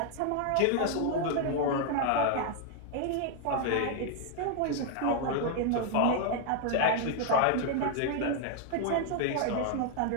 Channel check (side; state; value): both; different; correlation 0.00